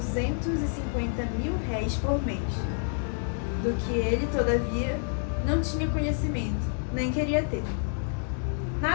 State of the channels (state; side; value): silent; right; 59 dB below the other